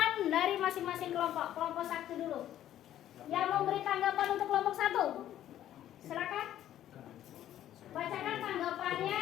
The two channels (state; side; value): quieter; right; 12.0 dB